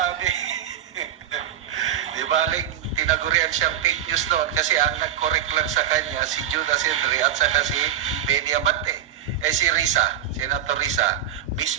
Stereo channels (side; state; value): left; quieter; 10.0 dB